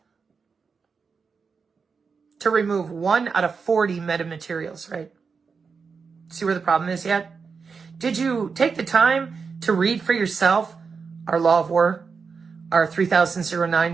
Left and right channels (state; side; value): quieter; left; 5.3 dB